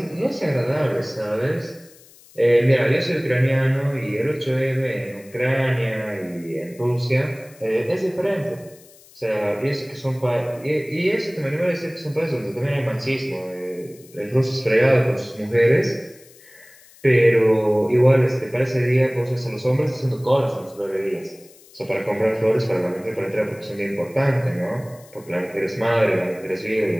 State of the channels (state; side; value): noise; left; hiss, 25 dB below the sound